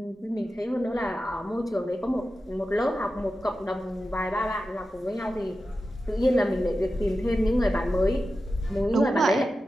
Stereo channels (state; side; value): normal; both; correlation 0.92